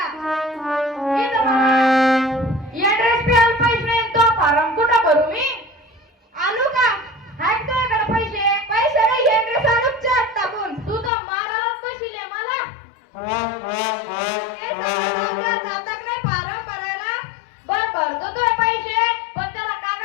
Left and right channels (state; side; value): drops out; right; at 11.1 s